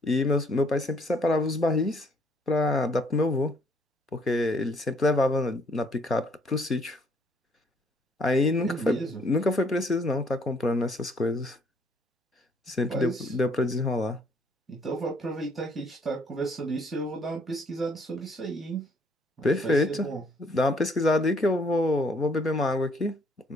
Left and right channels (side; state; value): both; normal; correlation 0.64